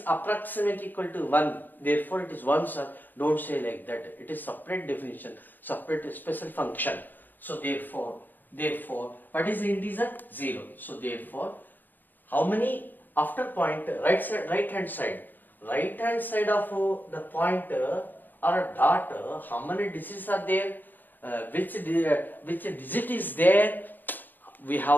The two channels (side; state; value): right; late; 0.088 ms